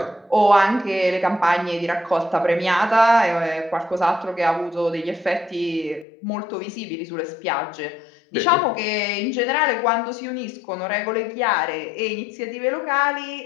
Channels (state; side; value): drops out; right; at 6.1 s